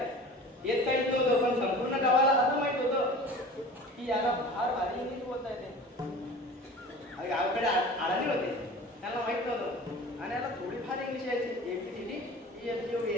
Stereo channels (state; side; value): normal; both; correlation 0.39